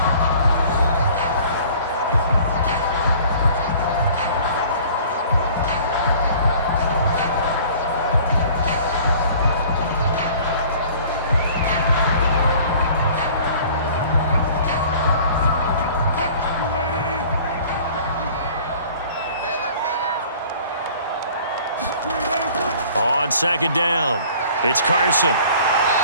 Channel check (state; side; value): inverted; both; correlation -0.50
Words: On 2nd down, it's Carson.